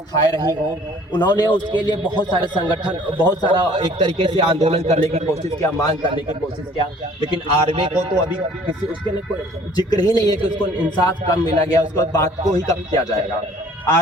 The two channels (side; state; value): both; normal; correlation 0.54